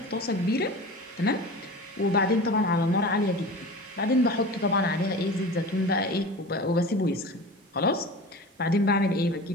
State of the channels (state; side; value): normal; both; correlation 0.34